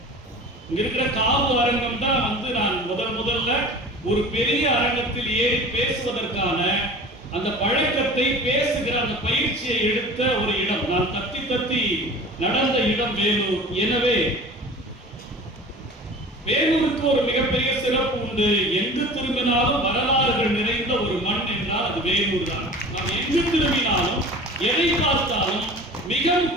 இங்க இருக்கிற காவு அரங்கம் தான் நான் முதல்ல ஒரு பெரிய அரங்கத்தில் ஏறி பேசுவதற்கான அந்த பழக்கத்தை பேசுகிற அந்த பயிற்சியை எடுத்த ஒரு இடம். நான் தத்தி நடந்த இடம் வேலூர். எனவே வேலூருக்கு ஒரு மிகப்பெரிய சிறப்பு உண்டு. எங்கு திரும்பினாலும் வரலாறுகள் நிறைந்த ஒரு மண் என்றால் அது வேலூர் தான். நாம் எங்கு திரும்பினாலும் எதை பார்த்தாலும் மிக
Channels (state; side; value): normal; both; correlation 0.40